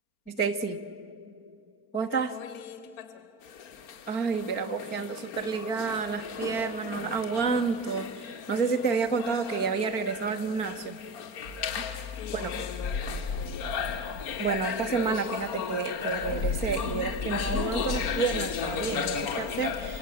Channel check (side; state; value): right; late; 4.4 ms